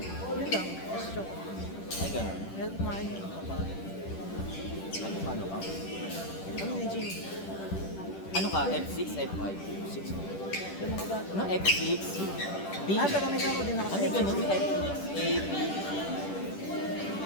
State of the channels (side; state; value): right; late; 10 ms